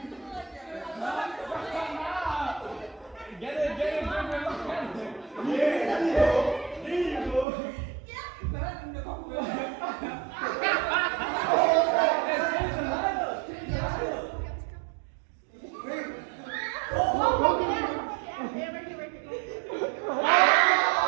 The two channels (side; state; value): left; drops out; at 7.5 s